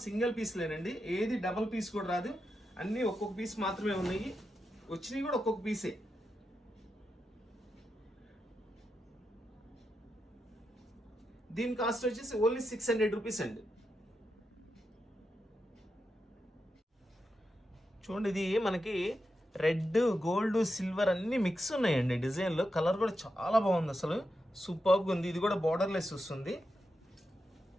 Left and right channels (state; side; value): normal; both; correlation 0.87